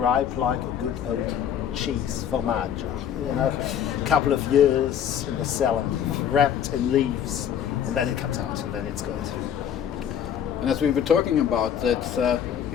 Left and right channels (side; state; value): right; quieter; 9.0 dB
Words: like a good old cheese, formaggio. You know, a couple of years in the cellar, wrapped in leaves, and then it comes out, and then it's good. And as we were talking about,